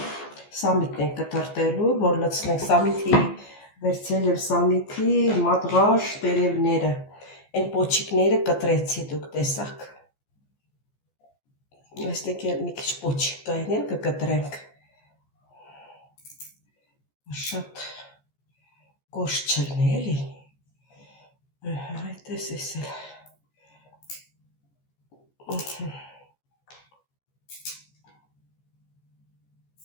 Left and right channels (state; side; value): late; right; 14 ms